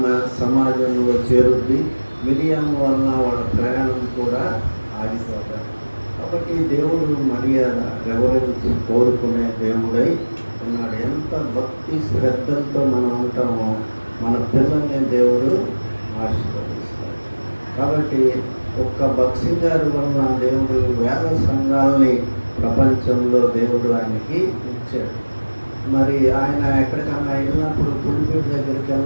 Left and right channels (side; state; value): both; inverted; correlation -1.00